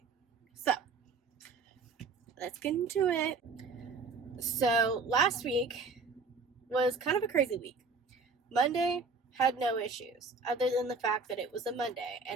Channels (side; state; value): left; quieter; 4.3 dB